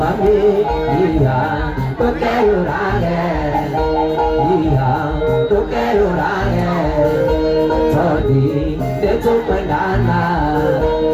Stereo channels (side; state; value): both; identical; correlation 1.00